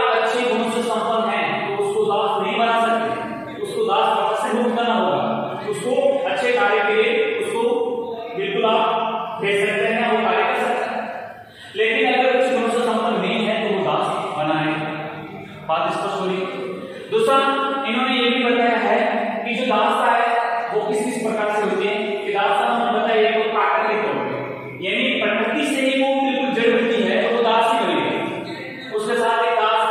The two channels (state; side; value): identical; both; correlation 1.00